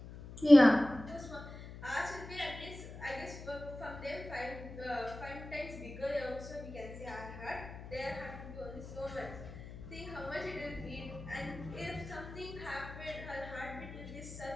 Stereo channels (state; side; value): noise; left; hum, 12 dB below the sound